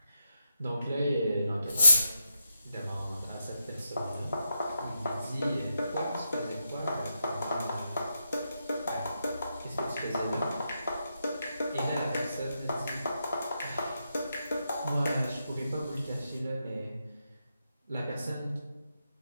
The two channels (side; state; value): both; inverted; correlation -0.83